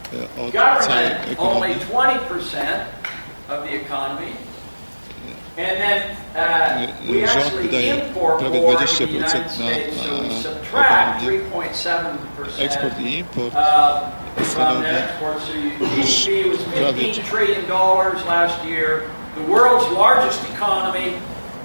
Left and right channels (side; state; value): both; inverted; correlation -1.00